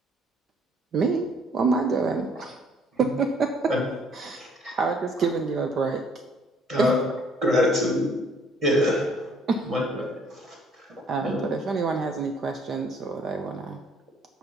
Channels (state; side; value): normal; both; correlation 0.61